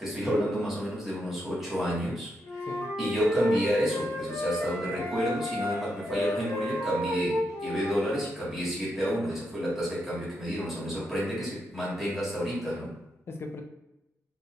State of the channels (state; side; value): normal; both; correlation 0.82